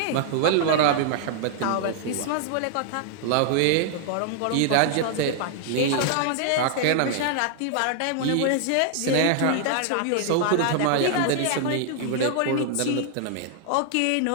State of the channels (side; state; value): both; different; correlation 0.00